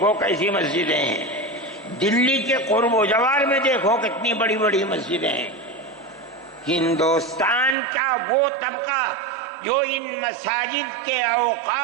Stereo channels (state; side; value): drops out; left; at 7.8 s